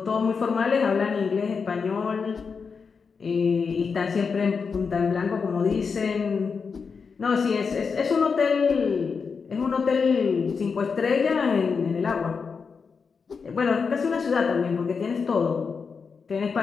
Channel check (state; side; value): quieter; right; 5.5 dB